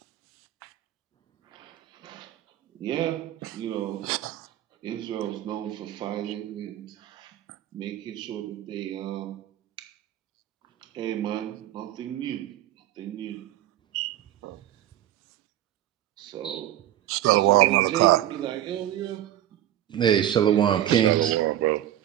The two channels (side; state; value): left; quieter; 12.4 dB